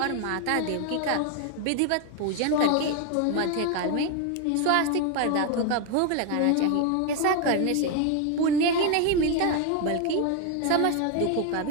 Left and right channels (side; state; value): both; different; correlation 0.01